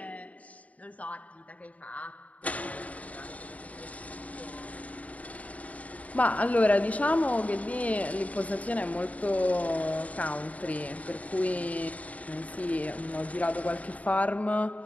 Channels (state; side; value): late; right; 0.070 ms